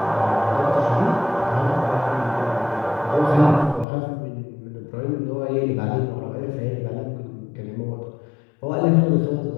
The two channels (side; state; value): right; drops out; at 3.9 s